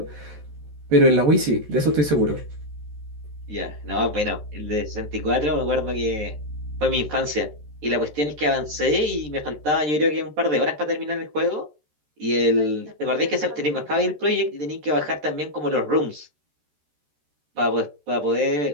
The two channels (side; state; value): left; late; 13 ms